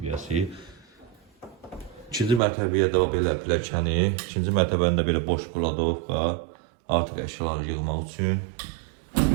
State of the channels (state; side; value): drops out; left; at 2.4 s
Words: 2-ci mərtəbəyə də belə pilləkəni, 2-ci mərtəbəndə belə boş buladovka, artıq əşyaları yığmaq üçün.